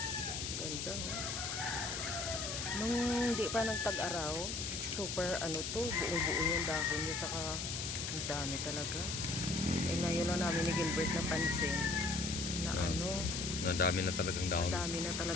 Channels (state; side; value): noise; left; hiss, 3 dB below the sound